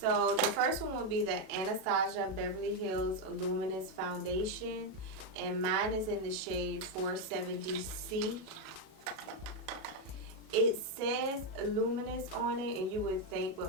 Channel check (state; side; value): late; left; 37 ms